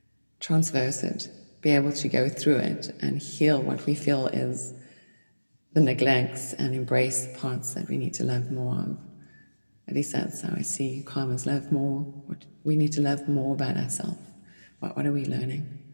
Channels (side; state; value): both; inverted; correlation -1.00